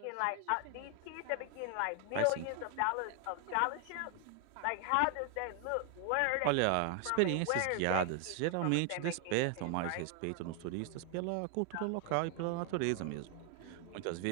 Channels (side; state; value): both; different; correlation 0.00